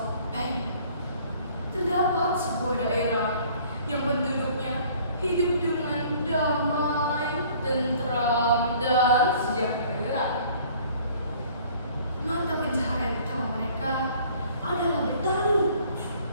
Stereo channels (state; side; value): inverted; both; correlation -0.55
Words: terdapat sebuah daerah yang penduduknya hidup dengan damai, tentram, dan sejahtera. Mata pencaharian utama mereka adalah bertani.